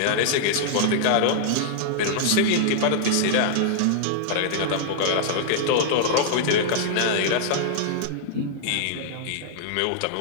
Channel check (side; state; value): both; different; correlation -0.01